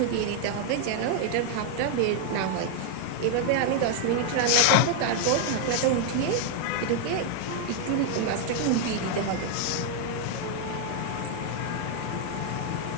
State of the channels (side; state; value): both; different; correlation 0.00